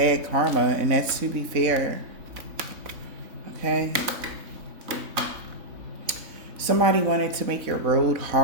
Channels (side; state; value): left; late; 3.6 ms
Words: karma, and that's to be fair, okay? Somebody wanted to make your road